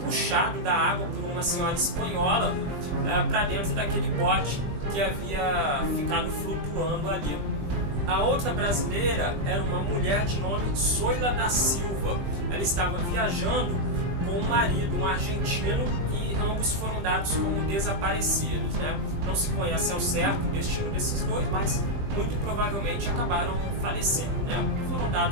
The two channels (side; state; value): left; late; 20 ms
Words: da água por uma senhora espanhola para dentro daquele bote que havia ficado flutuando ali. A outra brasileira era uma mulher de nome Zoila da Silva. Ela estava viajando com o marido, um argentino, e ambos foram dados como desaparecidos, né? Não se conhece ao certo o destino desses dois, mas muito provavelmente acabaram falecendo, né? Foram